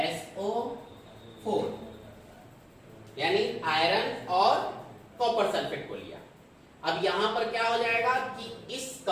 यानी आयरन और कॉपर सल्फेट को लिया। अब यहां पर क्या हो जाएगा कि इस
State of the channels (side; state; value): both; identical; correlation 1.00